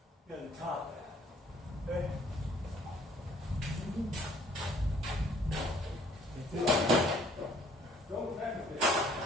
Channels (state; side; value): normal; both; correlation 0.60